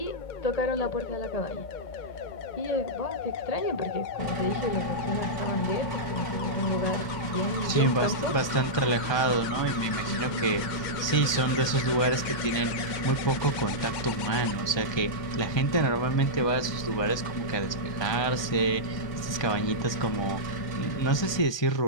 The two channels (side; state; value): right; late; 1.2 ms